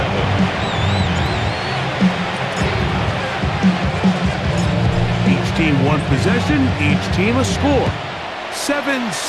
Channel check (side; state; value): both; identical; correlation 1.00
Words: Each team one possession, each team a score.